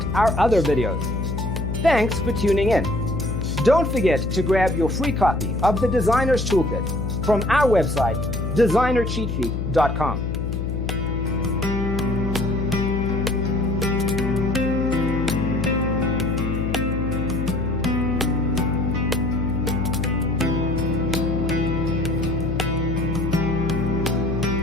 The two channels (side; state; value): left; noise; hum, 2 dB below the sound